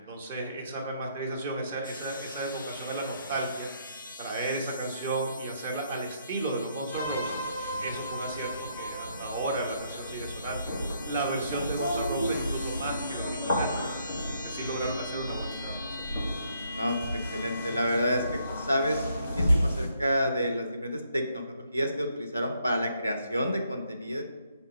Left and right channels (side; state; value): both; inverted; correlation -0.72